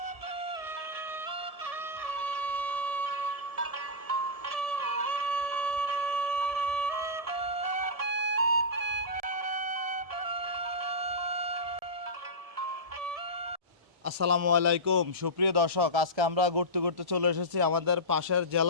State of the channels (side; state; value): left; late; 1.7 ms